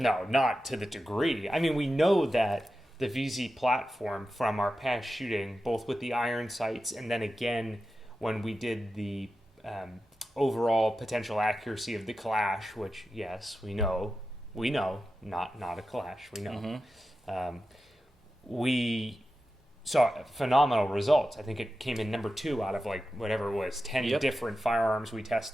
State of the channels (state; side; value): normal; both; correlation 0.91